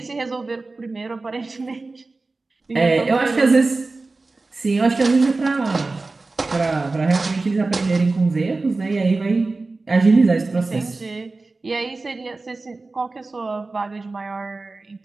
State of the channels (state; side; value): quieter; left; 3.5 dB